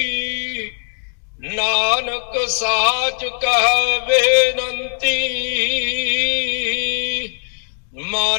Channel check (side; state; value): right; silent; digital silence